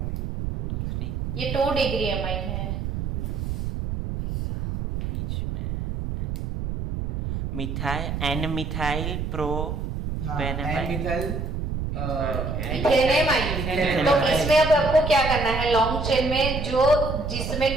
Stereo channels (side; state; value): right; noise; rumble, 3 dB below the sound